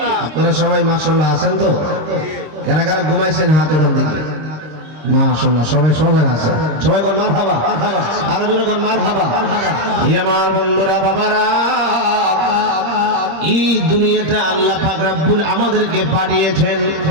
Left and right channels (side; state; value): left; late; 26 ms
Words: আপনারা সবাই মাশাআল্লাহ আছেন তো? কারা কারা ঘুমাইছেন হাত উঠান দেখি। মাশাআল্লাহ সবাই সজাগ আছে। সবাই কোন মারহাবা, আর জোরে কোন মারহাবা। আমার বন্ধুরা বাবারা, এই দুনিয়াটা আল্লাহ পাক রব্বুল আমাদেরকে পাঠিয়েছেন